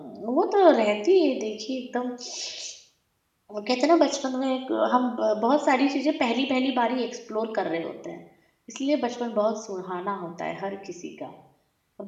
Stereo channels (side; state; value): both; identical; correlation 1.00